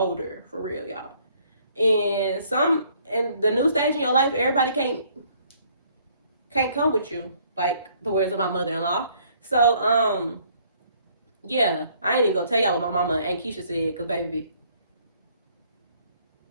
for real, y'all. And the new stage in your life, everybody can't come with you, like the words of my mother-in-law. So yeah, I ain't even gonna tell y'all what my mama and Keisha said, because baby,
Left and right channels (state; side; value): inverted; both; correlation -0.63